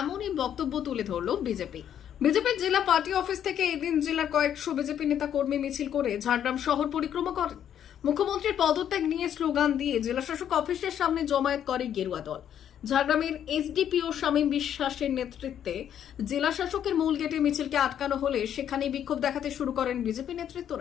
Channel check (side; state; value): right; quieter; 9.7 dB